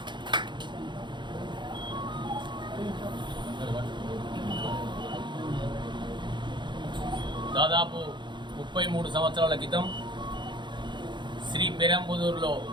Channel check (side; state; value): left; late; 0.22 ms